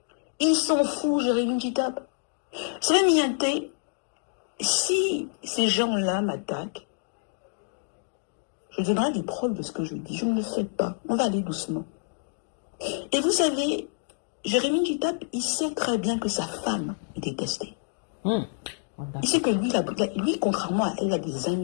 Ils s'en foutent, Jérémy Kitap. C'est même Mianté, si ces gens-là m'attaquent, je donnerai des preuves de ce que je dis. Je ne le fais pas. On va aller doucement. Et vous savez, Jérémy Kitap, il sait très bien que sa femme est détestée. Il sait que lui, contrairement à elle, a des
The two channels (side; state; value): right; silent; digital silence